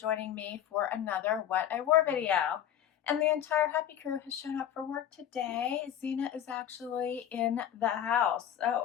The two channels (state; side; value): quieter; right; 10.1 dB